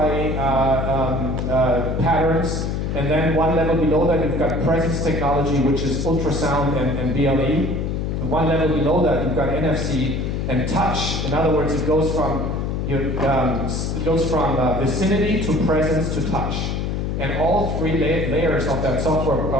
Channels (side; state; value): left; noise; hum, 1 dB below the sound